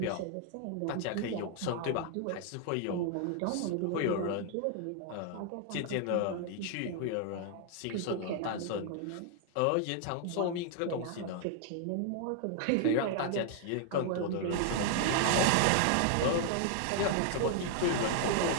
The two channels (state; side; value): different; both; correlation 0.00